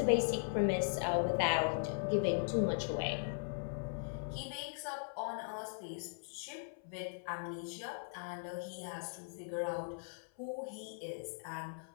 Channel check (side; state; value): right; silent; 52 dB below the other